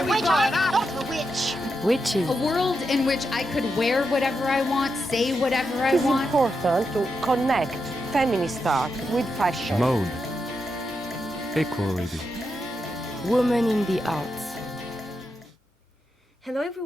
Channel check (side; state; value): both; normal; correlation 0.85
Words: The witch. Witches. A world in which I could wear whatever I want, say whatever I It's want. important to connect feminist art with fashion. Mode. Equality. Women in the Arts. Hello